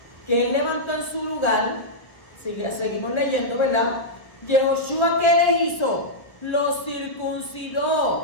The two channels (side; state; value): right; late; 1.1 ms